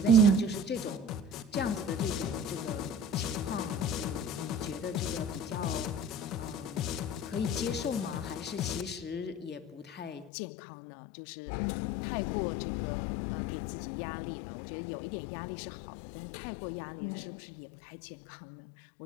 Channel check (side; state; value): right; drops out; at 10.3 s